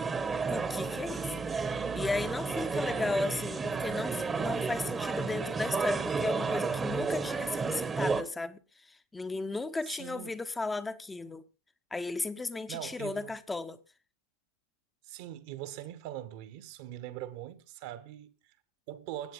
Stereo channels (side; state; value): both; normal; correlation 0.83